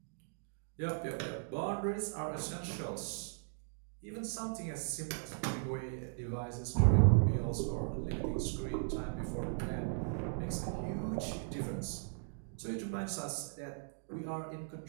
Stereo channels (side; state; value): left; silent; digital silence